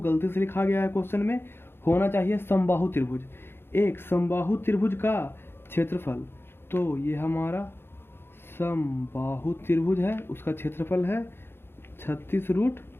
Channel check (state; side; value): late; right; 0.11 ms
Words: से लिखा गया है क्वेश्चन में, होना चाहिए समबाहु त्रिभुज। एक समबाहु त्रिभुज का क्षेत्रफल, तो ये हमारा समबाहु त्रिभुज है, उसका क्षेत्रफल है